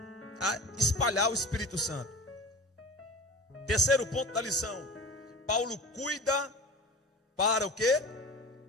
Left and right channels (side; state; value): both; normal; correlation 0.34